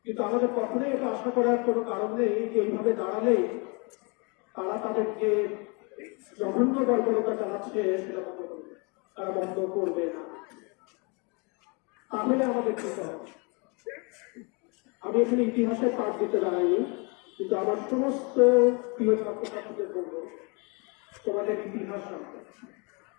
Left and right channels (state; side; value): quieter; right; 31.7 dB